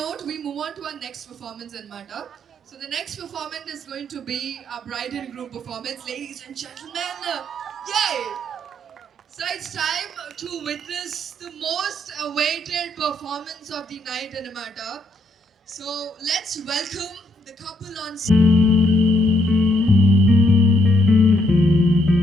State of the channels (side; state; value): both; normal; correlation 0.73